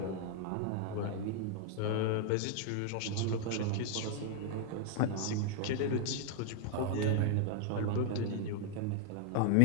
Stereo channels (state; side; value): different; both; correlation 0.00